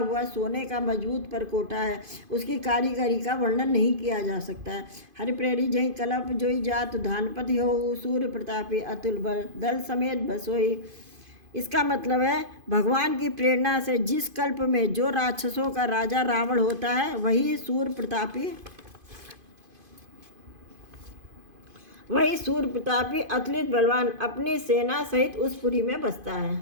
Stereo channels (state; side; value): late; left; 2.5 ms